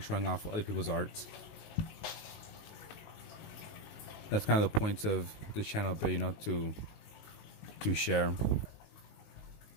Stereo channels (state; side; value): late; right; 19 ms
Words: showing off other people's arts. That's kind of the point of this channel, but to share.